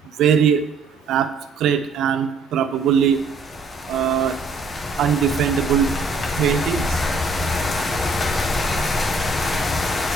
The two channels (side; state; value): left; quieter; 3.6 dB